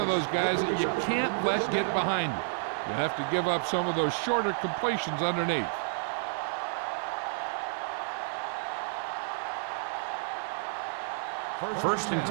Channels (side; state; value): left; silent; 58 dB below the other